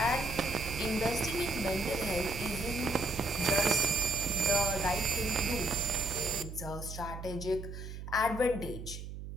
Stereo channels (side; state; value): right; noise; hum, 9 dB below the sound